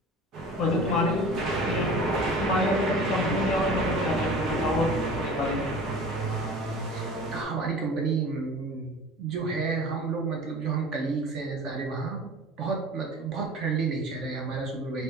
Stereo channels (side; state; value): both; normal; correlation 0.41